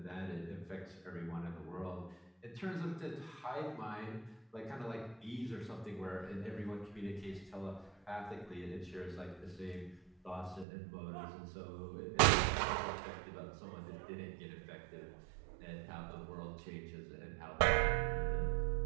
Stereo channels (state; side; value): drops out; left; at 10.7 s